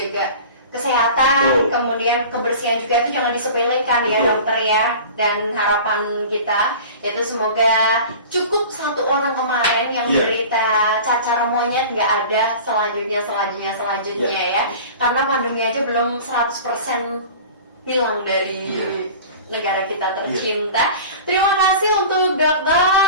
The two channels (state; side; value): inverted; both; correlation -0.39